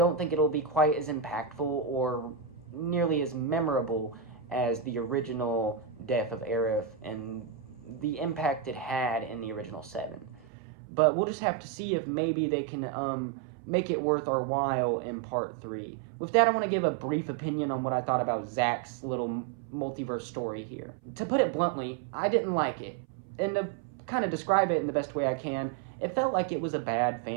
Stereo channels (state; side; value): drops out; left; at 10.5 s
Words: think it'll be quite as impactful or nearly as memorable as the original death of Aerith and the impact it had in the original 7. But we'll just have to see if maybe they can make it worth our while in Part 3. With that, I want to give a brief opinion on what I thought about Zack's little multiverse story here. To put it bluntly, I didn't like it. And to kind of describe it in the best way I can, it felt like it was a bad